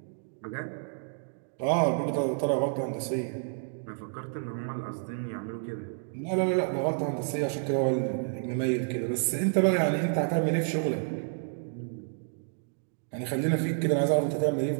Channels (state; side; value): silent; left; digital silence